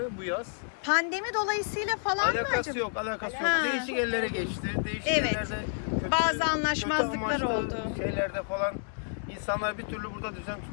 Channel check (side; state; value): right; silent; 58 dB below the other